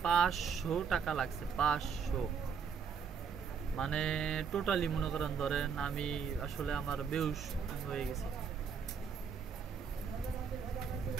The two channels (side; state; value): left; quieter; 6.4 dB